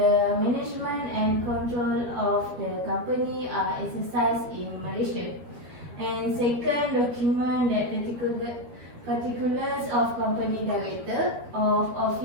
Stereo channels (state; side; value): late; left; 13 ms